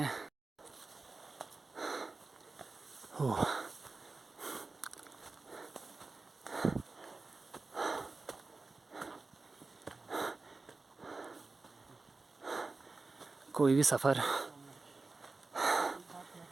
हो कोई भी सफ़र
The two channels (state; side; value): quieter; left; 3.7 dB